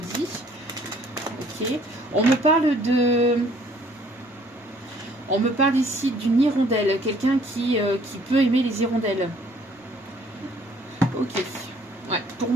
Ok. On me parle ici d'une hirondelle. Quelqu'un qui peut aimer les hirondelles. Ok. Ouais. Pour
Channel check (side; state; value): both; normal; correlation 0.59